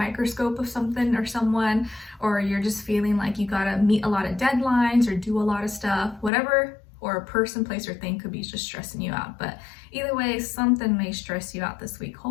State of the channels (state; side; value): drops out; right; at 6.3 s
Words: of something or someone, or you're just feeling like you gotta meet a lot of deadlines or do a lot of stuff, whatever, or a person, place, or thing could be just stressing you out. But either way, something may stress you out this week.